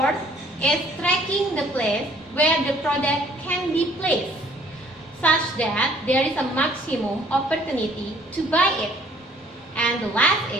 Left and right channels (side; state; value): both; normal; correlation 0.59